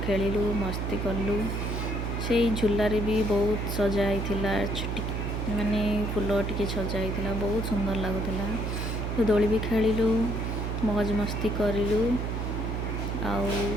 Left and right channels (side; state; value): right; noise; hum, 2 dB below the sound